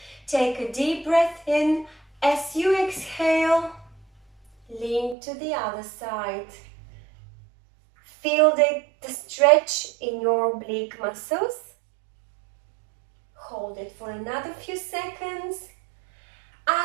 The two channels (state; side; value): drops out; left; at 5.2 s